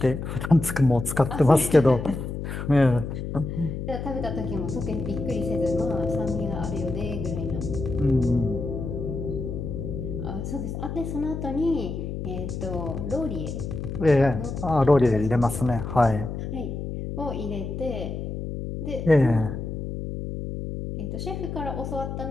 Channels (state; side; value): noise; left; hum, 5 dB below the sound